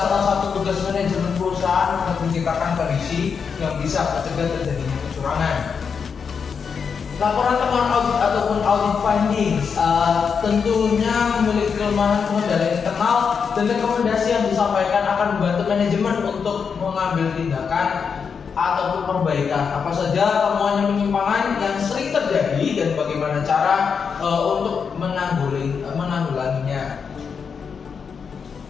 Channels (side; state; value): right; quieter; 6.2 dB